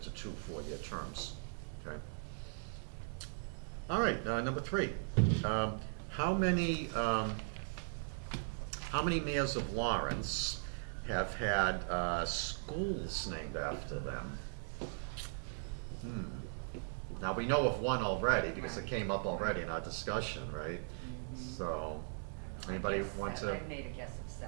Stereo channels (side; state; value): left; silent; digital silence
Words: to 2 4-year terms, okay? All right, number 3. How many mayors of Lawrence have had schools named after them? Now, we know of one already because it came up already in our discussion, right? So, anybody want to? I made a guess of